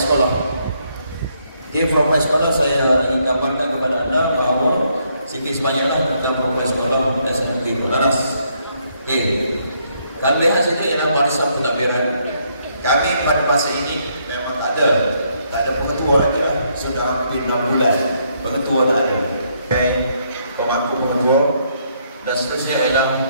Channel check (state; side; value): inverted; both; correlation -0.72